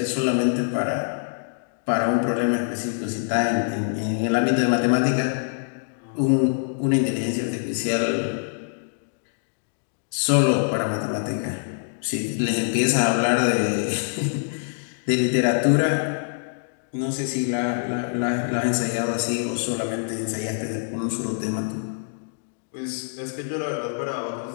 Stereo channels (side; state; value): right; silent; digital silence